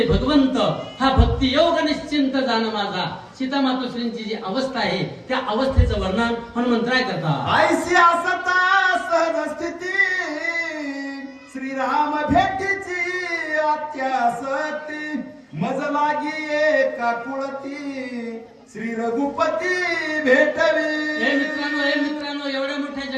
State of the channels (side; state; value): both; identical; correlation 1.00